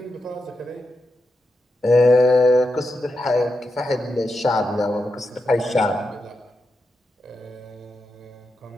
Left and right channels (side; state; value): both; normal; correlation 0.87